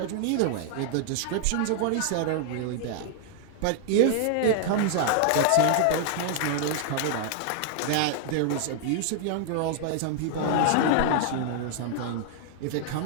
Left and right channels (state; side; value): different; both; correlation 0.00